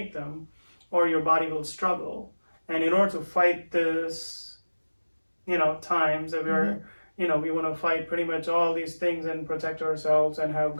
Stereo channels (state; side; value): inverted; both; correlation -1.00